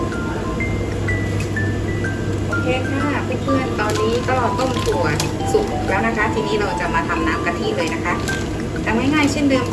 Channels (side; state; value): both; identical; correlation 1.00